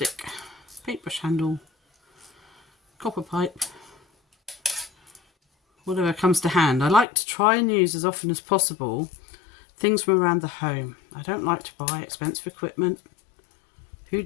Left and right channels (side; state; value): right; drops out; at 7.1 s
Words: paintbrush handle, copper pipe, whatever comes to hand. I like to try and use as often as possible things from around the home. I don't like to buy expensive equipment. Who